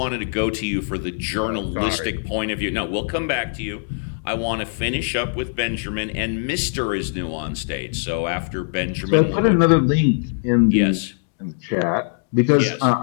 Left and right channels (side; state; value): right; silent; digital silence